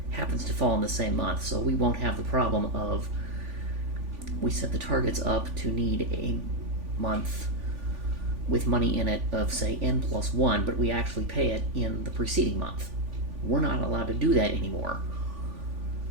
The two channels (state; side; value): late; left; 3.5 ms